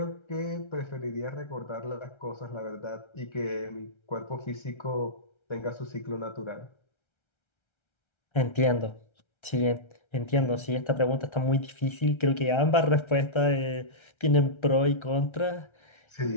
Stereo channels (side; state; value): right; late; 1.3 ms